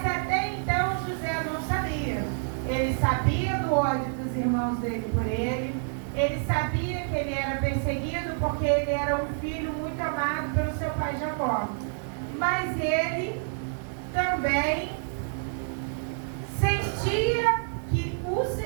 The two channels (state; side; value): silent; left; digital silence